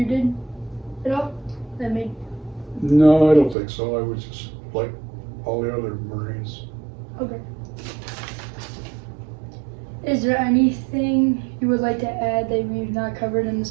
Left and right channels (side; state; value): left; drops out; at 3.6 s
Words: did at all that made? No, I don't think so. I was just like all the other Marines. Okay. Is there anything you would like to add that we've not covered in